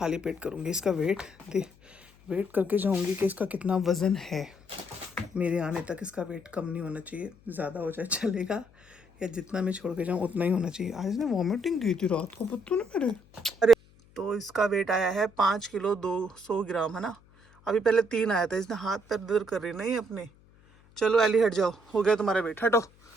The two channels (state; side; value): noise; left; hum, 28 dB below the sound